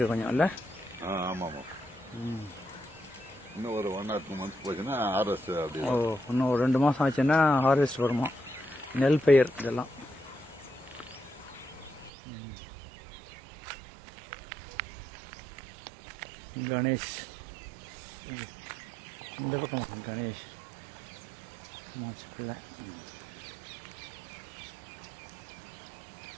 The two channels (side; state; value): left; drops out; at 12.1 s